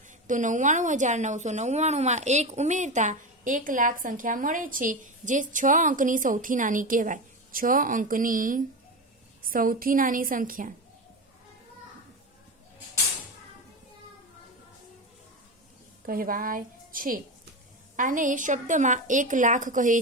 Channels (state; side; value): normal; both; correlation 0.20